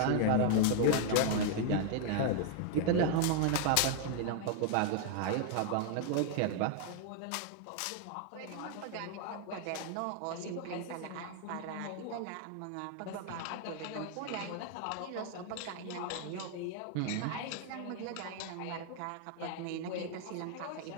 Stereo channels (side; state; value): both; different; correlation 0.00